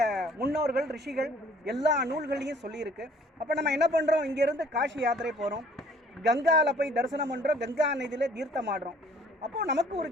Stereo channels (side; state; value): both; normal; correlation 0.56